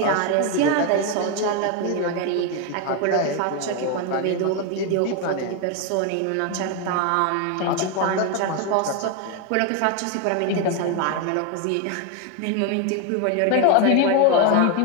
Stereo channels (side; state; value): both; different; correlation 0.01